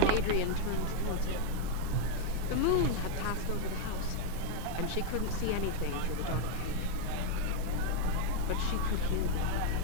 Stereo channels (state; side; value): different; both; correlation 0.01